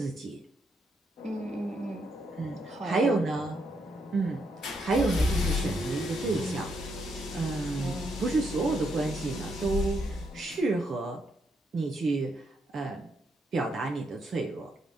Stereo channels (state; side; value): normal; both; correlation 0.77